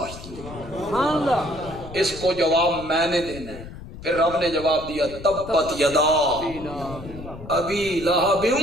نہیں، اس کو جواب میں نے دینا ہے۔ پھر رب نے جواب دیا تبت یدا ابی لہب،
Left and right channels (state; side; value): noise; left; rumble, 14 dB below the sound